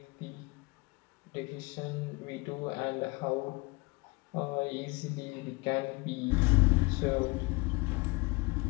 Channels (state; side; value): quieter; right; 25.5 dB